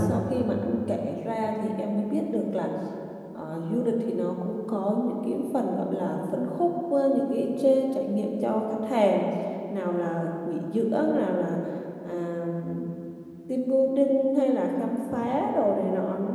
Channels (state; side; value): identical; both; correlation 1.00